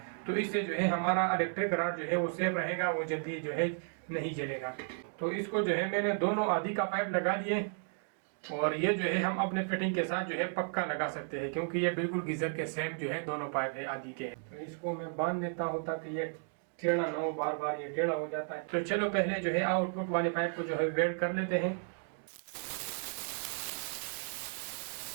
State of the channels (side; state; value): left; silent; 55 dB below the other